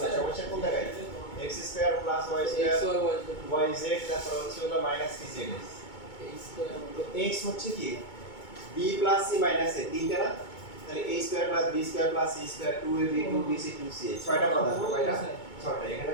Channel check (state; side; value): late; right; 2.2 ms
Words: নাই সমস্যা কোন জায়গায় x² + y² yz তারপর হচ্ছে হলো মাইনাস কি z তো x হচ্ছে কি b + c - a তিনটা না তাহলে a² + b² + c² 2ab 2bc 2ca ছয়টা কথা কয়টা ছয়টা এখানে